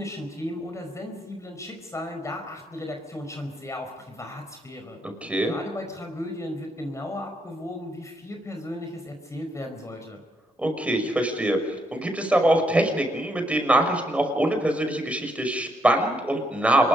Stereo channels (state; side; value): normal; both; correlation 0.76